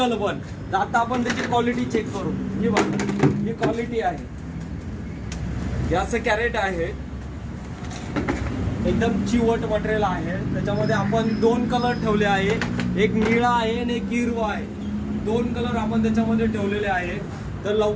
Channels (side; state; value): both; identical; correlation 1.00